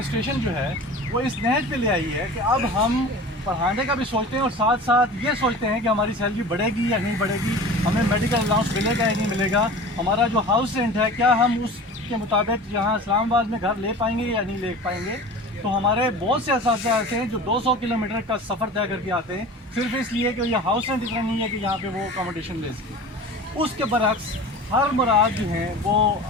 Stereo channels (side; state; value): both; normal; correlation 0.37